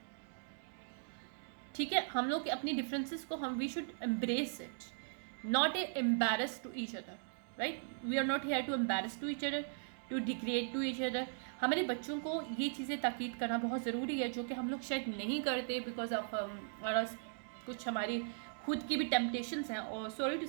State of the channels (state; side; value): silent; left; digital silence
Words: ठीक है, हम लोग अपनी डिफरेंसेस को we should embrace it, not embarrass to each other, right? We are not here to embarrass to each other, to degrade to each other. हमारे बच्चों को ये चीज़ें ताकीद करना बहुत ज़रूरी है, जो कि हम लोग शायद नहीं करते बिकॉज ऑफ कुछ हमारी खुद की भी टेम्पटेशंस हैं, और सॉरी टू